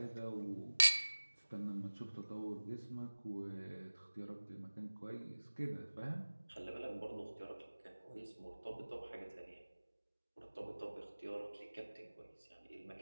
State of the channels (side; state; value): both; inverted; correlation -1.00